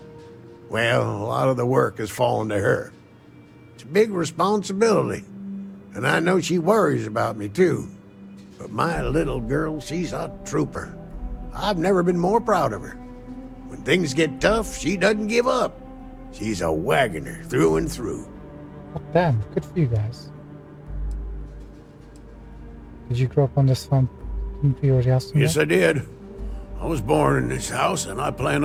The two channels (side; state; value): both; identical; correlation 1.00